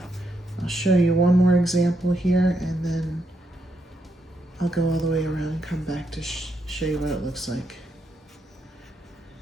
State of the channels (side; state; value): both; normal; correlation 0.79